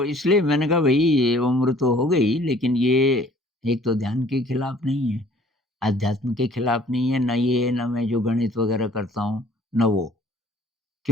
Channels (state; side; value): normal; both; correlation 0.55